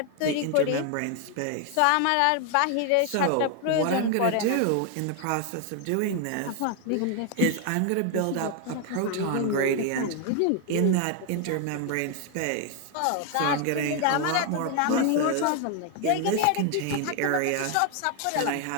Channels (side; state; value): both; different; correlation 0.00